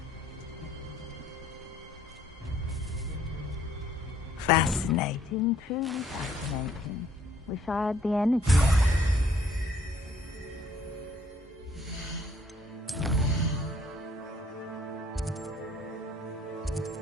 Fascinating, truly fascinating. Wish I had the energy.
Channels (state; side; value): normal; both; correlation 0.63